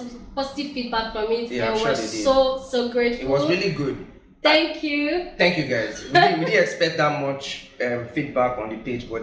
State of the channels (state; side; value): identical; both; correlation 1.00